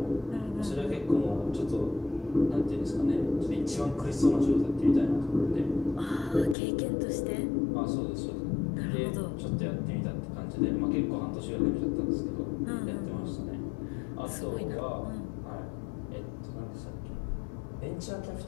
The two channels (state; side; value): drops out; right; at 6.6 s